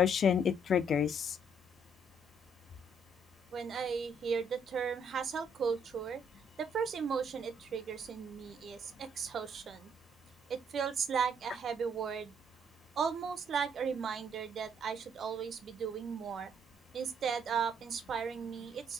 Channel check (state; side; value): normal; both; correlation 0.68